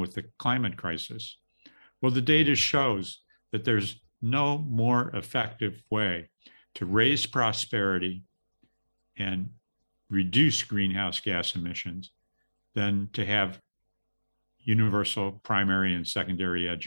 the climate crisis? Well, the data shows that there's no more effective way to raise prosperity and reduce greenhouse gas emissions than to have universal primary and secondary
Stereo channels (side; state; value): both; inverted; correlation -1.00